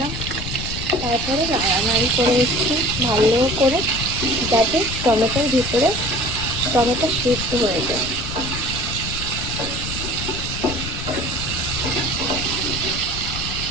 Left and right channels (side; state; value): left; noise; rumble, 7 dB below the sound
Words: তারপরে নাড়ানাড়ি করে নিচ্ছি ভালো করে, যাতে টমেটোর ভিতরে টমেটো সিদ্ধ হয়ে যায়।